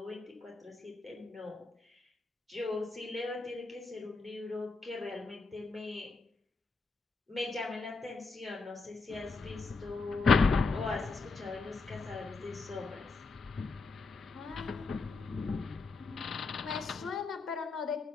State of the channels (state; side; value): quieter; right; 4.1 dB